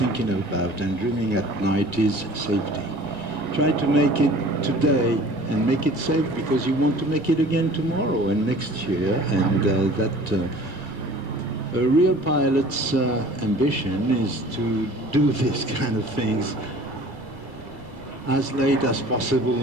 about and dreaming at night is safety. Try to make it today and make it safe because you want to make it again tomorrow and next year. And a real pilot's ambition is to do these kind of things as late as possible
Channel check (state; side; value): noise; right; rumble, 21 dB below the sound